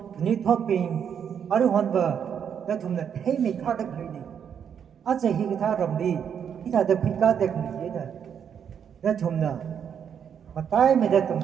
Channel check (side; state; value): left; quieter; 8.0 dB